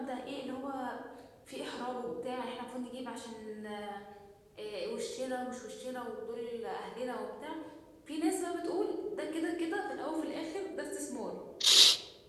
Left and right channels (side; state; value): both; identical; correlation 1.00